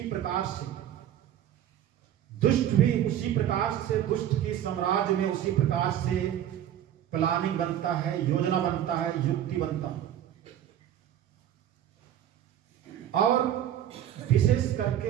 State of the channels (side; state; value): left; quieter; 11.0 dB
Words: प्रकार से, दुष्ट भी उसी प्रकार से, दुष्ट के साम्राज्य में उसी प्रकार से प्लानिंग बनता है, योजना बनता है, युक्ति बनता है। और विशेष